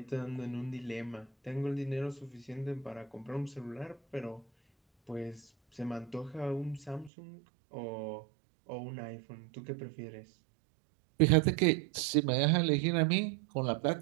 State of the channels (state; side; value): drops out; left; at 7.1 s